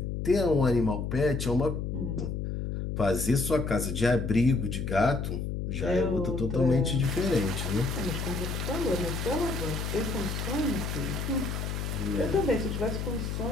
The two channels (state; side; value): noise; left; hum, 3 dB below the sound